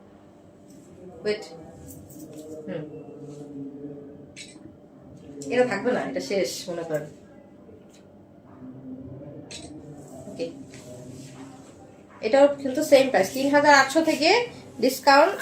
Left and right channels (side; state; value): both; identical; correlation 1.00